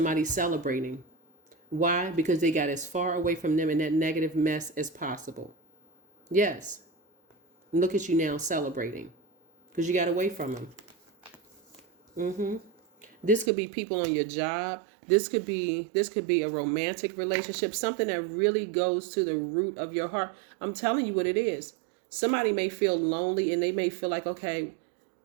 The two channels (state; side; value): drops out; left; at 13.5 s